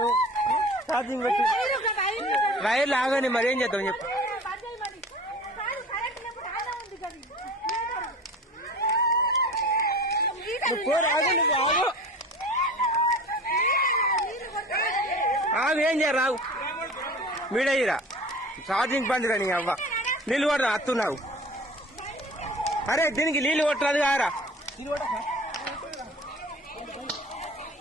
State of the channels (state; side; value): normal; both; correlation 0.40